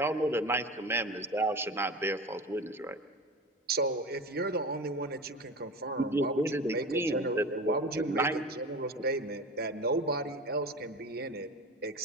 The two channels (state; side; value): normal; both; correlation 0.31